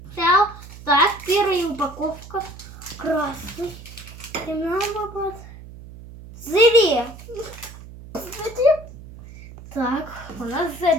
взял. Так, первая упаковка. Красный. Зеле. Так, у нас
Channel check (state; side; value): noise; right; hum, 16 dB below the sound